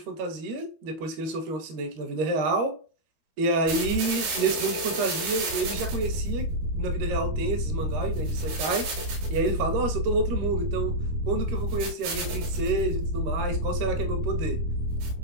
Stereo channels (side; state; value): left; late; 13 ms